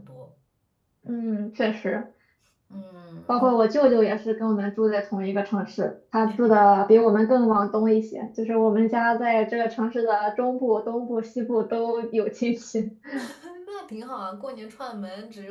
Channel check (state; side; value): identical; both; correlation 1.00